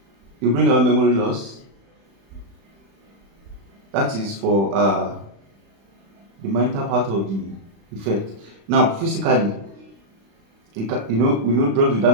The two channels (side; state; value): left; late; 36 ms